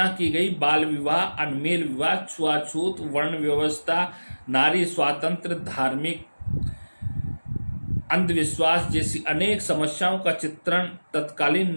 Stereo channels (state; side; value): inverted; both; correlation -1.00